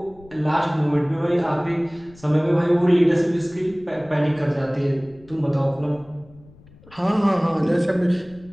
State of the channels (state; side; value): noise; left; rumble, 25 dB below the sound